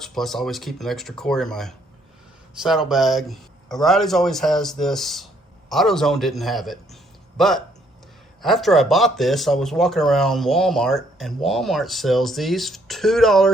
plus I always keep an extra quart in my saddlebag. O'Reilly's always has this. AutoZone didn't have it, but after I bought this, I was walking around Walmart, and Walmart sells these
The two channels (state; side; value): normal; both; correlation 0.67